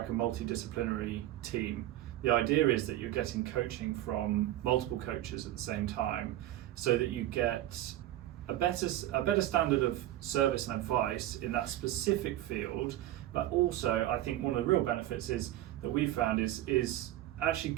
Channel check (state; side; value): quieter; left; 14.2 dB